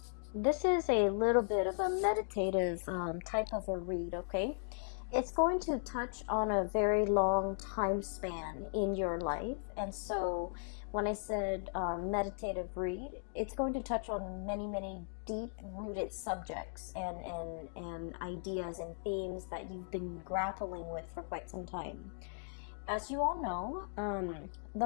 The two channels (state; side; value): silent; right; digital silence